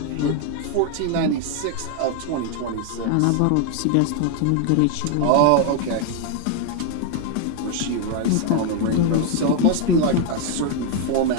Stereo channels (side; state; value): both; different; correlation 0.00